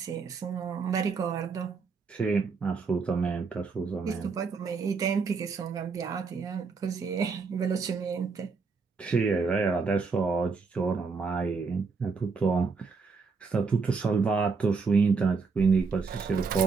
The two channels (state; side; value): quieter; left; 4.9 dB